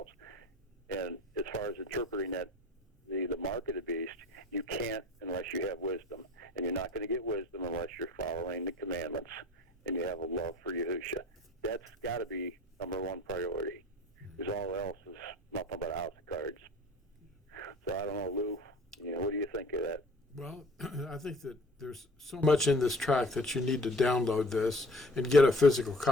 And as far as interpreting that, the mark of the beast, you can't unless you have wisdom. And you're not going to get wisdom unless you're following the commandments and you have a love for Yahusha. That's got to be number one priority, because all else is nothing but a house of cards. So I don't know, Lou, what do you think of that? Well, I think that there's so much in this track that you need to download this and get a physical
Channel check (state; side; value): normal; both; correlation 0.45